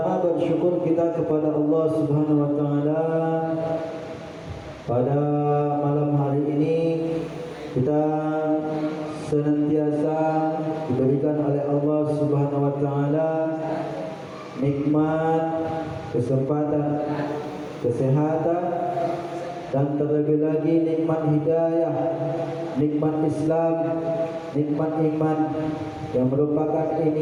bersyukur kita kepada Allah Subhanahu wa taala. Pada malam hari ini kita senantiasa diberikan oleh Allah Subhanahu wa taala nikmat, kesempatan, kesehatan, dan terlebih lagi nikmat hidayah, nikmat Islam, nikmat iman, yang merupakan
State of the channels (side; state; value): both; identical; correlation 1.00